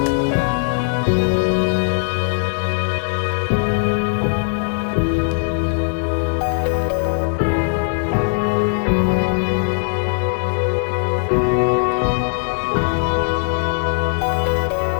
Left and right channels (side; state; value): right; silent; digital silence